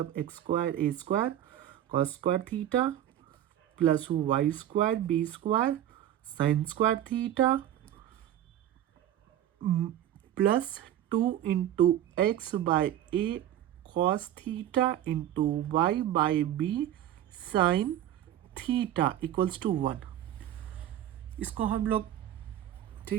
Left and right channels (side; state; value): left; quieter; 11.7 dB